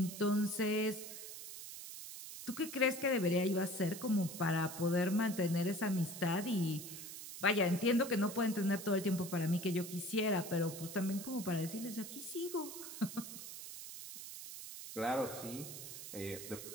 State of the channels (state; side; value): noise; right; hiss, 10 dB below the sound